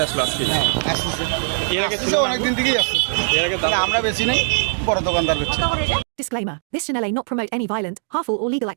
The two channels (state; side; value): silent; left; digital silence